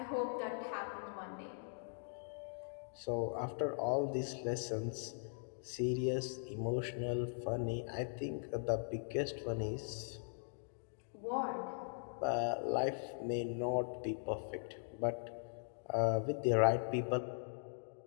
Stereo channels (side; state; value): right; silent; digital silence